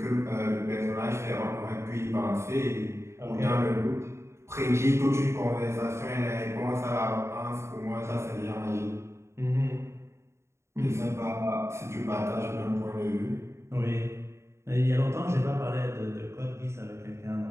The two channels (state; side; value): late; left; 0.13 ms